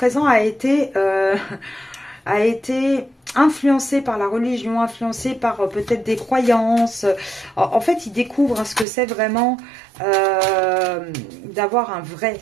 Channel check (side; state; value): left; drops out; at 8.8 s